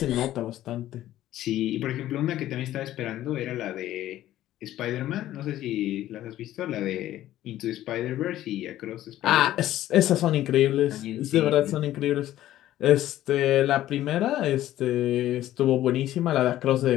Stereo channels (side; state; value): right; quieter; 13.7 dB